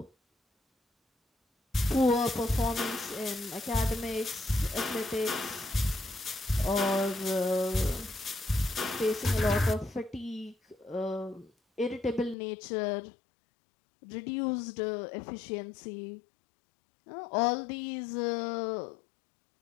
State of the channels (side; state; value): right; drops out; at 12.4 s